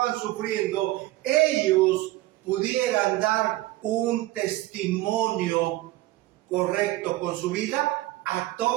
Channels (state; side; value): quieter; left; 17.5 dB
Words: sufriendo, ellos pudieran dar un testimonio correcto con su vida a